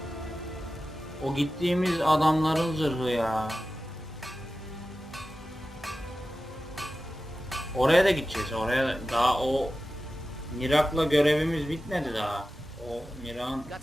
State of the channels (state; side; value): normal; both; correlation 0.94